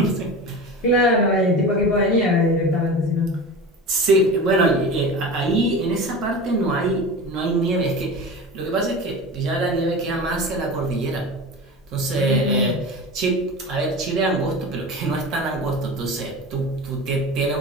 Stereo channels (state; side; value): normal; both; correlation 0.31